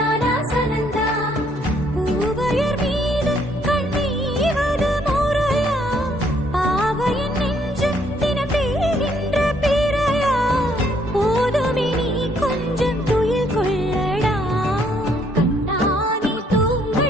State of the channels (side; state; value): both; normal; correlation 0.68